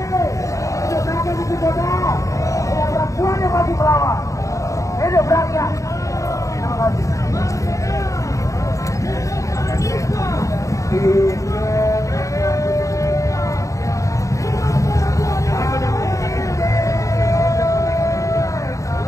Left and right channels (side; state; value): right; late; 0.16 ms